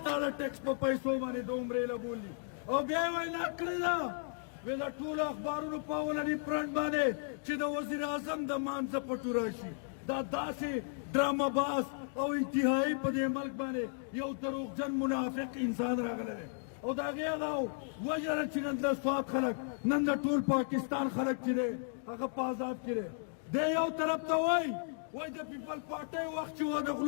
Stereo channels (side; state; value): right; silent; digital silence